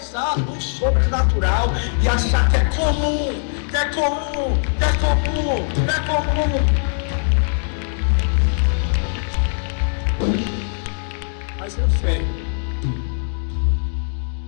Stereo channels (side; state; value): right; silent; digital silence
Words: o sobrenatural e achar que é comum, que é comum, que é comum, que é comum. Mas eu